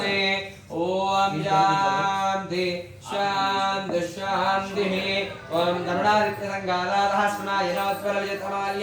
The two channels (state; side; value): identical; both; correlation 1.00